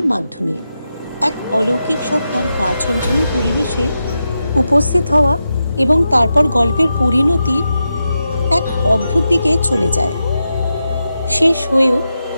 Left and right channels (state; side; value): inverted; both; correlation -0.88